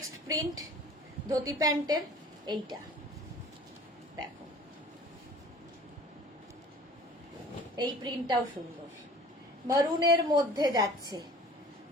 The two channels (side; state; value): both; normal; correlation 0.46